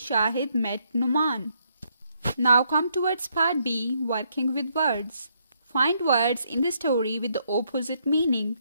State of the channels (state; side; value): inverted; both; correlation -0.74